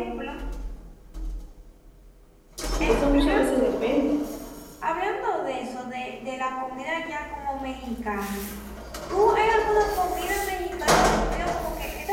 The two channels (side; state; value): both; identical; correlation 1.00